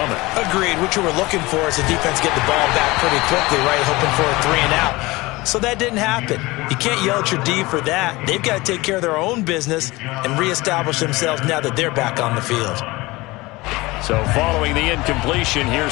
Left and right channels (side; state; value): right; quieter; 21.4 dB